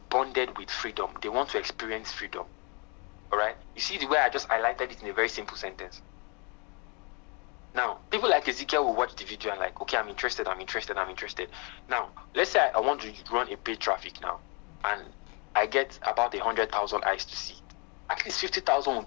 bonded with freedom. They want to experience freedom. All right. You see the way I just highlighted it in a very simple sentence. Now, people like Ezekiel will watch the video and like, okay, I'm interested. Now, let's say I want to run a paid traffic now, and I get about 100,000 eyes to see. At least 50,000 will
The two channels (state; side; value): quieter; right; 33.2 dB